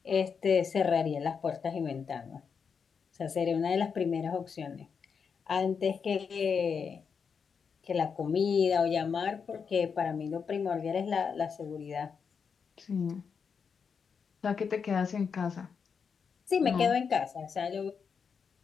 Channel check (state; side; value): quieter; right; 6.2 dB